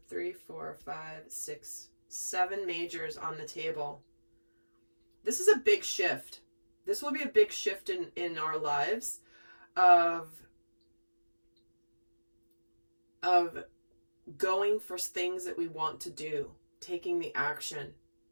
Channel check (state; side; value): inverted; both; correlation -1.00